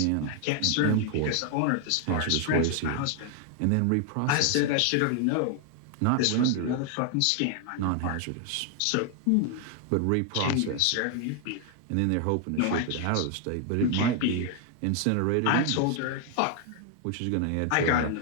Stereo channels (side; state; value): both; different; correlation 0.00